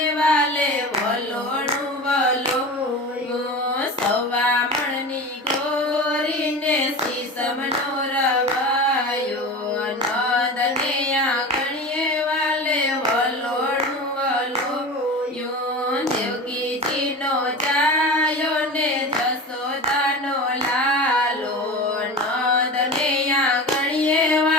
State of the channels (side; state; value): both; normal; correlation 0.31